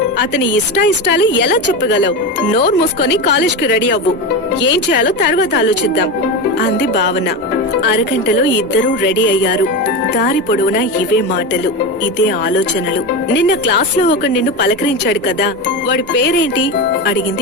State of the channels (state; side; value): normal; both; correlation 0.19